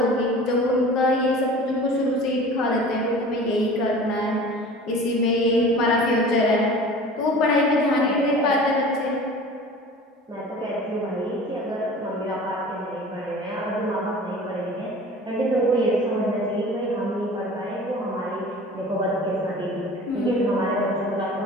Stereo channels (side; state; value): both; normal; correlation 0.41